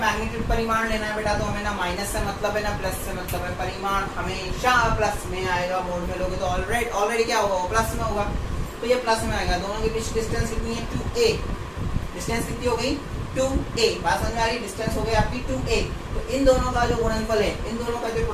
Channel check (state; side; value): identical; both; correlation 1.00